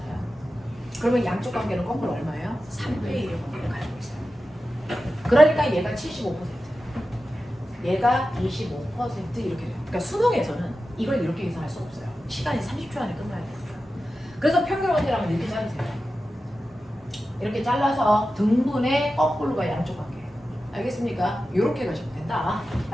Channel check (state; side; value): normal; both; correlation 0.93